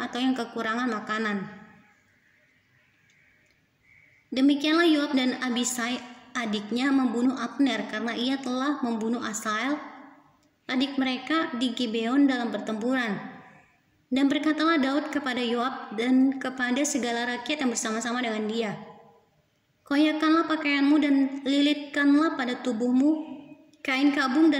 atau yang kekurangan makanan." Demikianlah Yoab dan Abisai adiknya membunuh Abner karena ia telah membunuh Asael, adik mereka, di Gibeon dalam pertempuran. Dan berkatalah Daud kepada Yoab dan kepada segala rakyat yang bersama-sama dengan dia, "Koyakkanlah pakaianmu dan lilitkanlah pada tubuhmu kain kabung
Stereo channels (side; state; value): both; identical; correlation 1.00